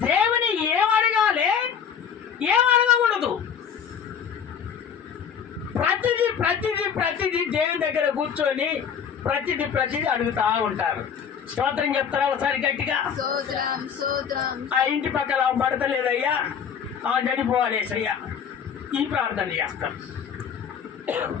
దేవుని ఏం అడగాలి, ఏం అడగకూడదు. ప్రతిదీ దేవుని దగ్గర కూర్చొని ప్రతిదీ అడుగుతా ఉంటారు. స్తోత్రం చెప్తారా ఒకసారి గట్టిగా? స్తోత్రం స్తోత్రం. ఆ ఇంటి పక్కన పడతలేదయ్యా, చనిపోవాలేసయ్యా, ఈ ప్రార్థన చేస్తాం.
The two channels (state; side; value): quieter; right; 7.5 dB